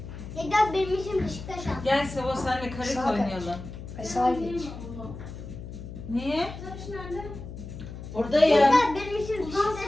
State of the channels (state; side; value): noise; left; hum, 11 dB below the sound